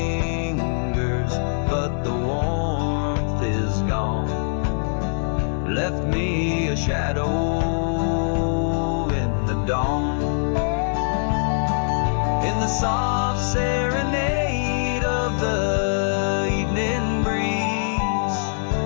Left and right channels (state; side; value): silent; right; digital silence